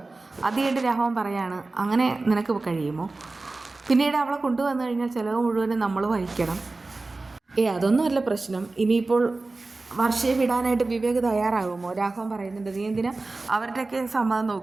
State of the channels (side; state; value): left; quieter; 3.4 dB